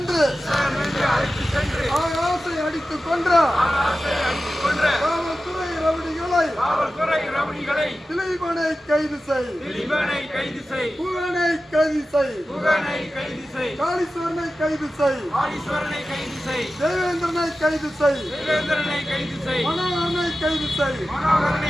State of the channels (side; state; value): both; normal; correlation 0.94